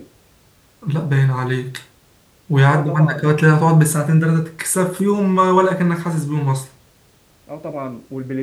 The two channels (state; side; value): identical; both; correlation 1.00